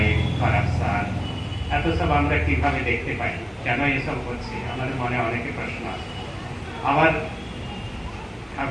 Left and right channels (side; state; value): both; identical; correlation 1.00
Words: করাপশন, এত সব আমরা কিভাবে দেখতে পাই? কেন এসব হচ্ছে? আমাদের মনে অনেকে প্রশ্ন আছে। আবার